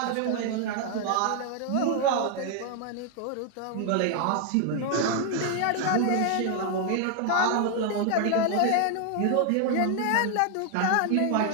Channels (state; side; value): different; both; correlation 0.00